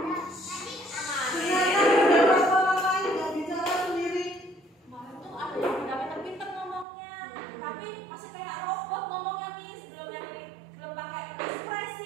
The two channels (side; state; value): left; drops out; at 6.9 s